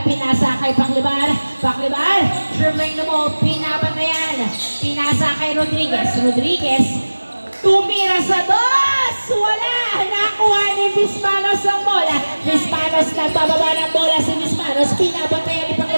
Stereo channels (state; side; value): inverted; both; correlation -1.00